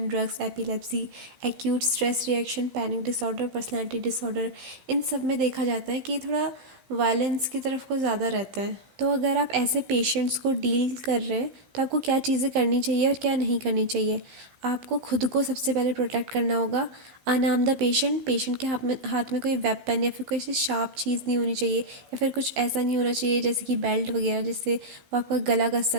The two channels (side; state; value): left; late; 16 ms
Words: drugs, epilepsy, acute stress reaction, panic disorder, personality disorder. इन सब में देखा जाता है कि थोड़ा वायलेंस की तरफ को ज़्यादा रहता है. तो अगर आप ऐसे पेशेंट्स को डील कर रहे हैं तो आपको क्या चीज़ें करनी चाहिए और क्या नहीं करनी चाहिए. आपको खुद को सबसे पहले प्रोटेक्ट करना होगा. अनआर्म द पेशेंट. पेशेंट के हाथ में कोई वेपन या फिर कोई ऐसी शार्प चीज़ नहीं होनी चाहिए, या फिर कुछ ऐसा नहीं होना चाहिए जैसे कि बेल्ट वगैरह जिससे वो आपका गला कस